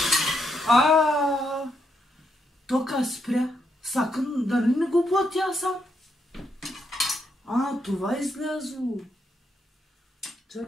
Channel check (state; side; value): normal; both; correlation 0.79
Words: кавала. Тока спря. Сакам, дали не го платя сам? Това излязло.